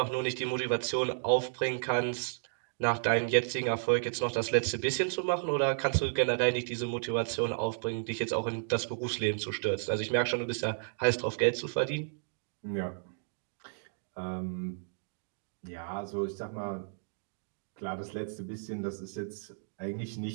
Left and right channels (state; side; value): silent; left; digital silence